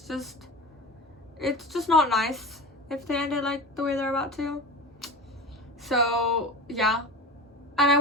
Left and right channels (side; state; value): both; normal; correlation 0.30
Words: just not nice if they end it like the way they're about to. So yeah, and I